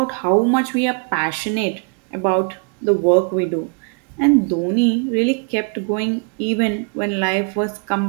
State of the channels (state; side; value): quieter; left; 37.3 dB